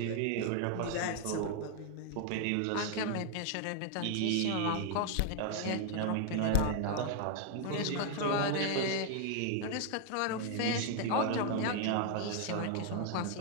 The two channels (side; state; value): both; different; correlation 0.00